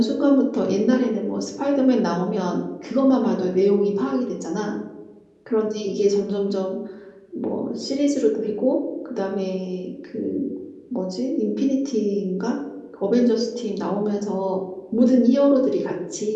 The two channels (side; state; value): both; identical; correlation 1.00